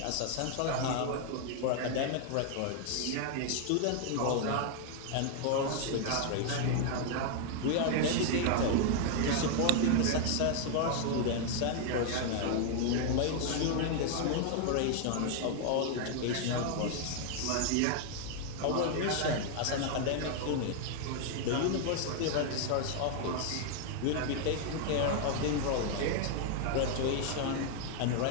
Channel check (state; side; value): different; both; correlation 0.00